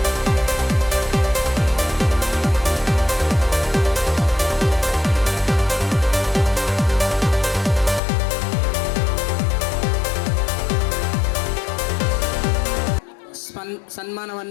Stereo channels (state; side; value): drops out; right; at 8.0 s